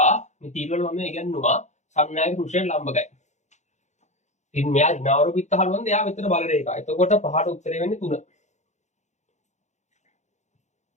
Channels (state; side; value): late; right; 0.34 ms